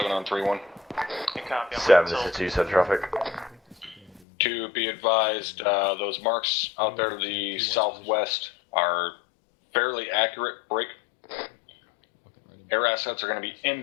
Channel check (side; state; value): right; drops out; at 4.2 s